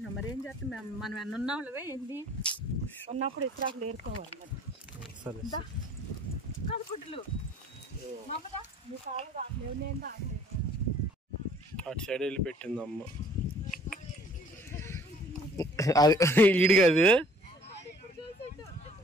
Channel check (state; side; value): normal; both; correlation 0.55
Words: మరి ఏం చేస్తాం, మనం ఎన్న ఉన్నావులవే ఏంది ఉన్నప్పుడు ఇస్రాకులు ఏరుకోవాలి మరి. సరే కాదు గుడ్డలు మమ్మదా నీ కాలు రావట్లేవు, నేను రావట్లేదు. అటు సైడ్ వెళ్ళి పెట్టింది అమ్మ. అది ఈడు కాదు.